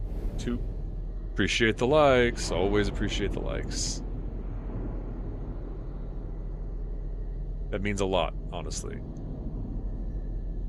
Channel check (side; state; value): both; identical; correlation 1.00